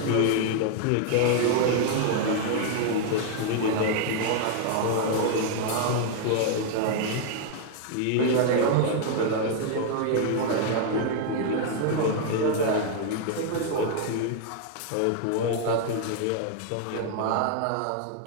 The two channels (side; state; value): both; different; correlation 0.00